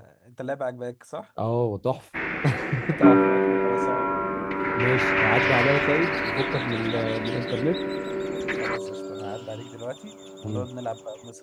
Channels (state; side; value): identical; both; correlation 1.00